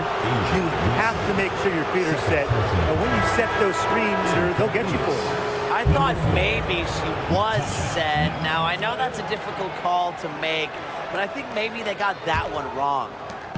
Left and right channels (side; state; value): both; identical; correlation 1.00